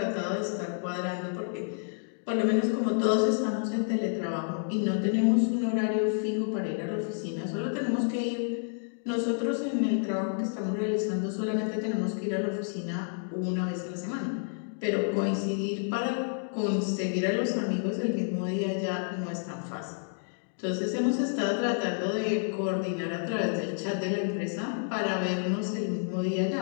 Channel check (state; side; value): silent; right; digital silence